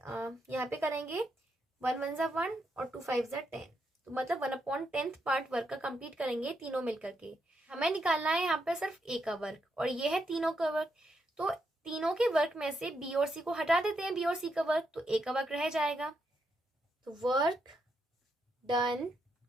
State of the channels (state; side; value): normal; both; correlation 0.80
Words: यहाँ पे करेंगे, 1 1 जा 1 और 2 5 जा 10, तो मतलब 1/10 पार्ट वर्क का कंप्लीट करेंगे तीनों मिलकर के। हमें निकालना है यहाँ पे सिर्फ ए का वर्क और ये है तीनों का वर्क, तो तीनों के वर्क में से बी और सी को हटा देते हैं, बी और सी का वर्क, तो ए का वर्क रह जाएगा। तो work done